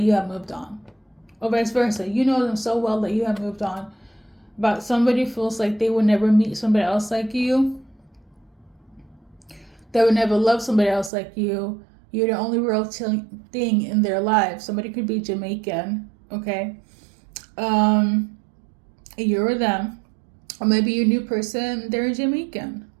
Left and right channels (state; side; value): drops out; left; at 11.1 s